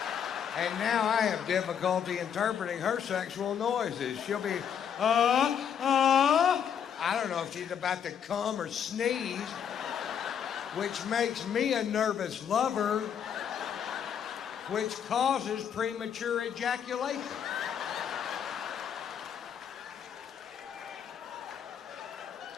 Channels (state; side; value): quieter; right; 8.3 dB